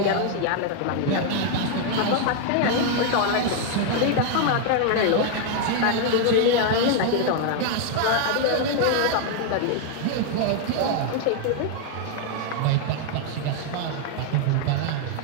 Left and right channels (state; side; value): different; both; correlation 0.00